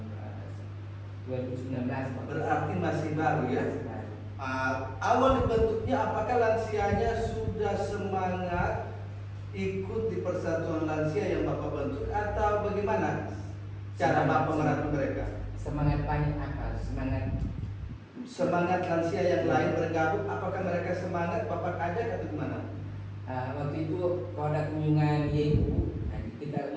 2019. Berarti masih baru ya. Masih baru. Awal dibentuknya apakah lansianya sudah semangat ikut di persatuan lansia yang Bapak bentuk atau bagaimana cara Bapak merangkul mereka? Semangat banyak apa? Semangat lansia yang lain bergabung, apakah mereka semangat Bapak ajak atau gimana? Waktu itu kalau ada kunjungan YU, kita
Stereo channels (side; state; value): both; identical; correlation 1.00